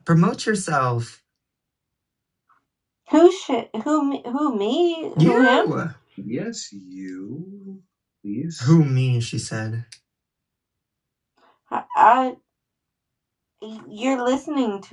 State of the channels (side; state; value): both; identical; correlation 1.00